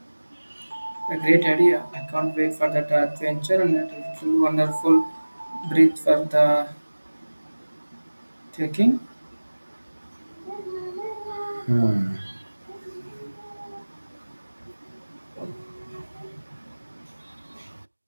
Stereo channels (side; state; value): both; inverted; correlation -1.00